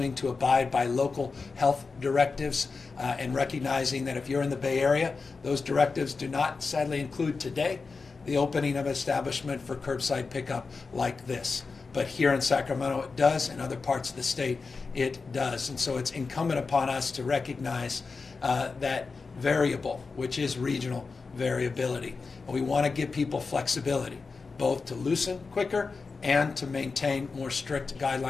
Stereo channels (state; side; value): quieter; right; 4.4 dB